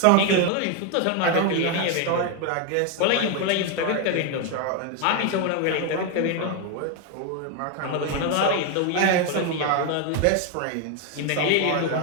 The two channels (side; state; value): both; different; correlation 0.01